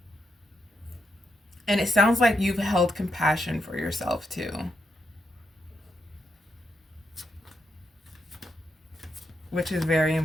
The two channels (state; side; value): normal; both; correlation 0.82